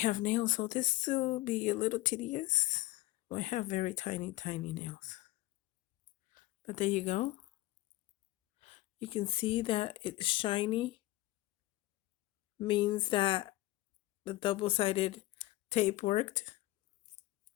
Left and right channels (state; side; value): quieter; right; 17.4 dB